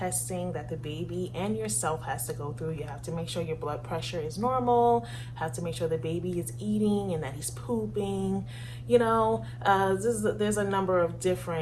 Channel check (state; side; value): identical; both; correlation 1.00